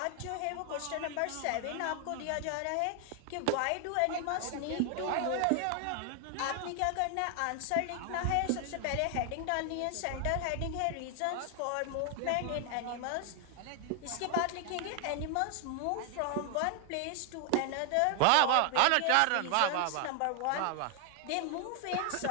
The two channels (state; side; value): different; both; correlation 0.00